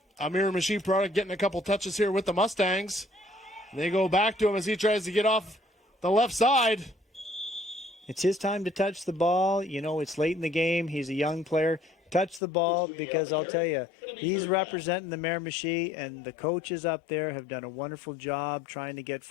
a Miramichi product getting a couple touches here with the Mustangs. They go back to him as he tries to get off the left side. It's his time to touch the ball. You know, it's late in the game. He's a young player. Touch the ball, because I'll tell you, he's representing the Miramichi, and the coaches up there have done a wonderful job trying to get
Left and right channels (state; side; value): drops out; right; at 12.4 s